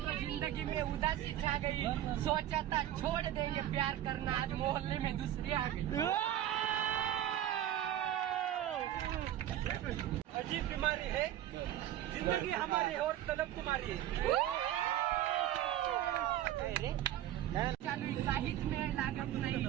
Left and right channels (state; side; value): quieter; left; 12.4 dB